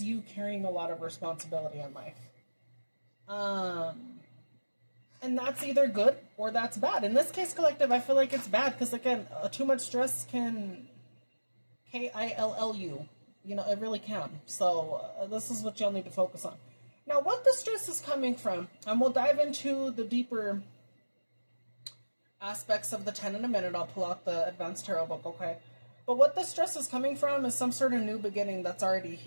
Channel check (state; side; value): inverted; both; correlation -1.00